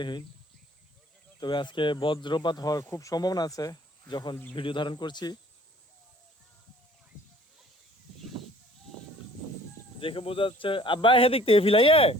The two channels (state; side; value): normal; both; correlation 0.53